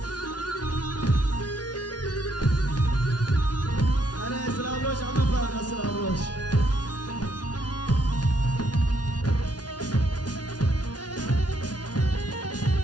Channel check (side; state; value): right; late; 0.69 ms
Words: Slavroš, ama para Slavroš.